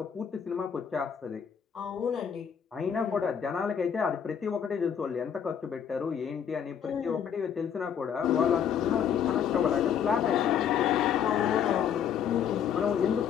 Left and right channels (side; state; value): right; quieter; 8.2 dB